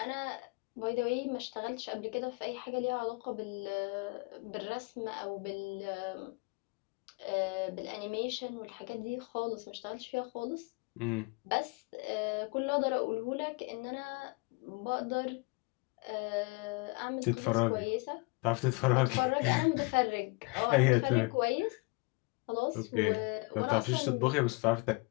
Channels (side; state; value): right; quieter; 29.0 dB